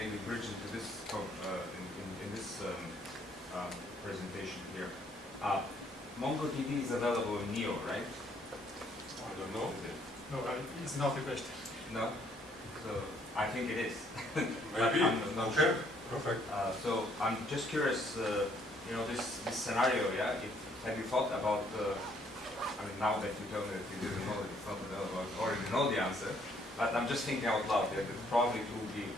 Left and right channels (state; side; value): normal; both; correlation 0.66